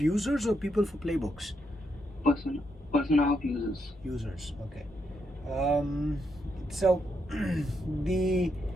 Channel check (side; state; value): both; normal; correlation 0.79